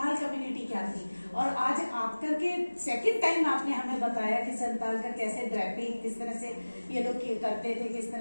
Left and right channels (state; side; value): inverted; both; correlation -1.00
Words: कम्युनिटी क्या थी, और आज आप करके सेकंड टाइम आपने हमें बताया कि संथाल का कैसे ड्रेपिंग किस तरह से ये लोग करते थे, किस